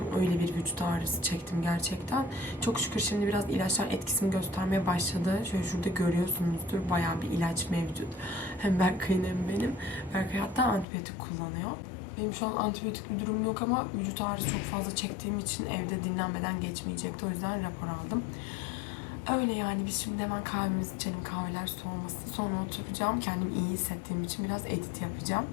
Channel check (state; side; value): drops out; right; at 10.9 s